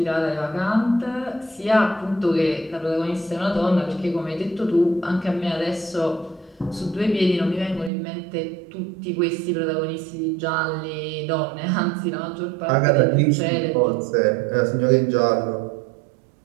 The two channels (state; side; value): drops out; left; at 7.9 s